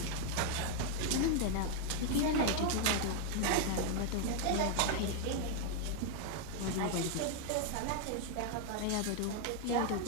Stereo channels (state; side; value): different; both; correlation 0.00